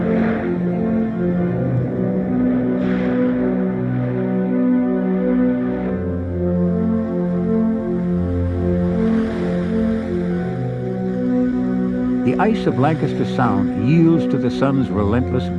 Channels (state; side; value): identical; both; correlation 1.00